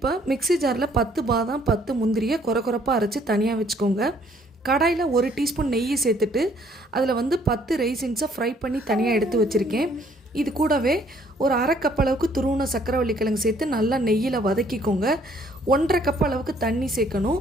மிக்ஸி ஜாரில் 10 பாதாம் 10 முந்திரியை கொரப்பாக அரைச்சி தனியாக வச்சுக்கோங்க. கடாயில் 1 டீஸ்பூன் நெய்யை சேர்த்துட்டு அதில் 10 ரைசின்ஸை ஃப்ரை பண்ணி தனியாக எடுத்து வச்சுருக்கேன். இது கூடவே ஒரு 1/2 கப் அளவுக்கு துருவின சக்கரவள்ளி கிழங்கு சேர்த்து நல்லா நெய்யில் வதக்கிக்கோங்க. 1/2 கப் அளவுக்கு தண்ணி சேர்க்கணும்.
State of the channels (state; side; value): normal; both; correlation 0.63